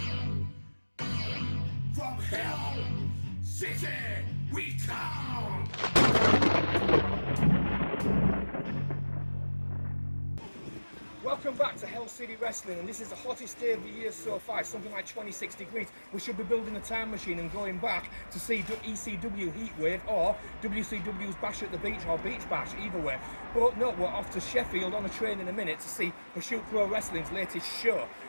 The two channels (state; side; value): inverted; both; correlation -1.00